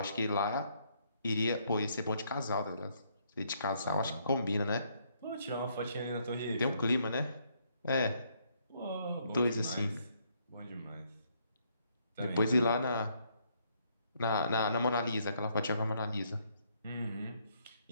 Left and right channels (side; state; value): both; inverted; correlation -0.71